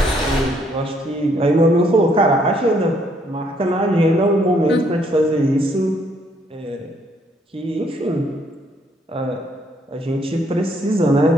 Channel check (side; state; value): both; normal; correlation 0.69